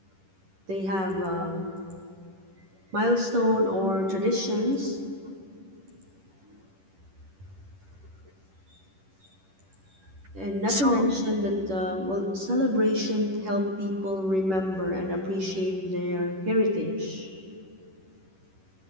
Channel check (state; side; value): late; left; 10 ms